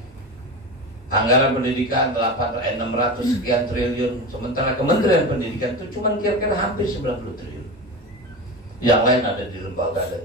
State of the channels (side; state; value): both; normal; correlation 0.25